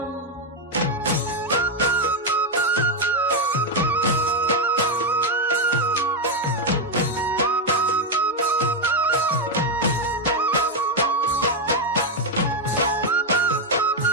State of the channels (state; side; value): normal; both; correlation 0.03